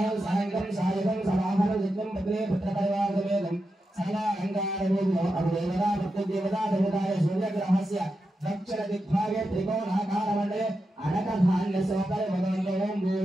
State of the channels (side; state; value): both; normal; correlation 0.88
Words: సాయంత్రం సాయకం సమాహన జిత్వం పత్రే పుత్ర పరివార సమేతం సకల అంగారవేదో అభిదేవతా देवता देवताय सूर्यग्रहस्य दक्षिण दिग्भागे त्रिकोणाकारमण्डले अनकधान्यसोपरि भगवन्तो ओं